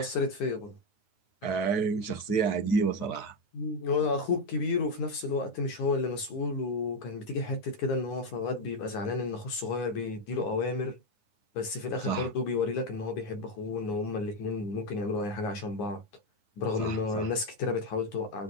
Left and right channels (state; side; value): late; right; 9.6 ms